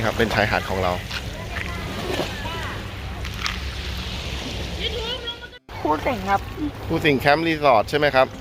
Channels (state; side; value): identical; both; correlation 1.00